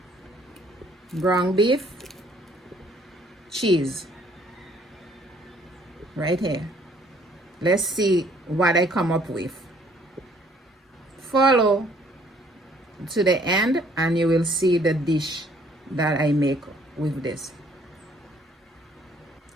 ground beef, cheese. Right here. Let's see what I come up with. Follow to the end and you will see the dish that I make with this.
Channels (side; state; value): both; normal; correlation 0.61